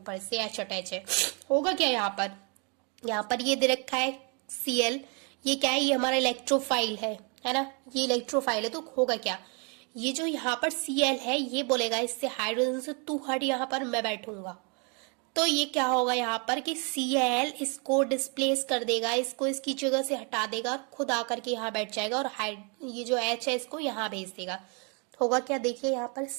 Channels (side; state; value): left; quieter; 34.8 dB